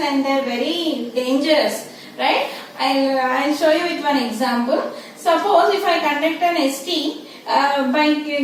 they are very dangerous, right? I'll show you with one example. Suppose if I conduct an ST by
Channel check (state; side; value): identical; both; correlation 1.00